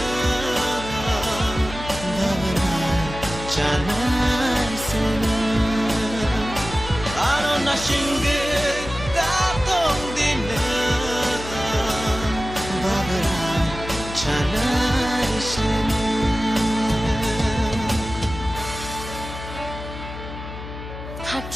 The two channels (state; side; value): noise; left; hum, 10 dB below the sound